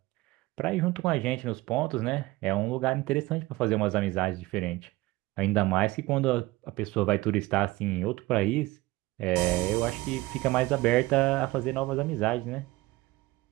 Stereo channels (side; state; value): left; quieter; 19.9 dB